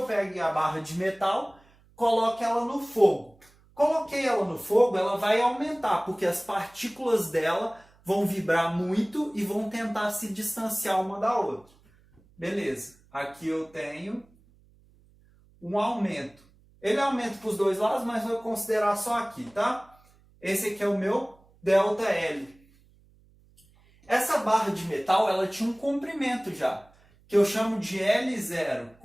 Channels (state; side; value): noise; right; hum, 30 dB below the sound